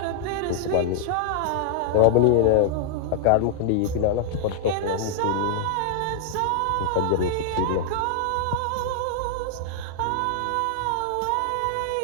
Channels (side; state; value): both; different; correlation -0.01